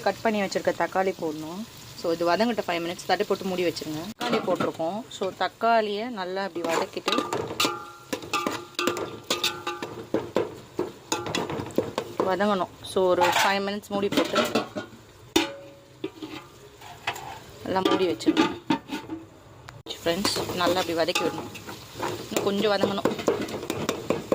கட் பண்ணி வச்சுருக்க தக்காளி போடணும். ஸோ இது வதங்கிட்ட 5 மினிட்ஸ் தட்டி போட்டு மூடி வச்சுருங்க. தக்காளி போட்டிருக்கோம். ஸோ தக்காளியை நல்லா அப்படி வதக்கிட்டு வதங்கணும். ஸோ ஒரு 5 மினிட்ஸ் மூடி போட்டு நல்லா மூடி வச்சுருங்க. ஃப்ரெண்ட்ஸ் நல்லா அப்படி வதக்கி விடணும். இன்னும் கொஞ்சம் வதங்கணும்.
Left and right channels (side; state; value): both; identical; correlation 1.00